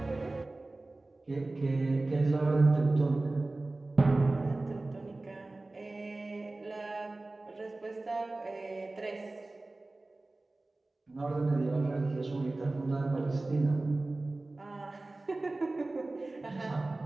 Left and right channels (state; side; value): quieter; left; 3.0 dB